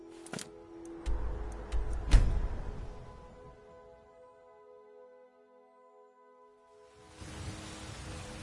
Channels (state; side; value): identical; both; correlation 1.00